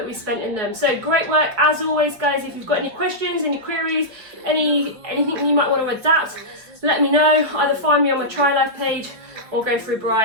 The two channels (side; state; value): left; late; 4.9 ms